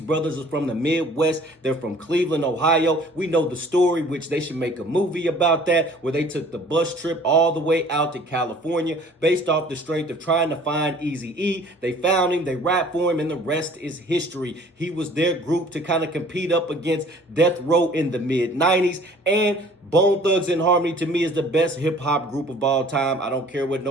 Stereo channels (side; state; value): both; normal; correlation 0.51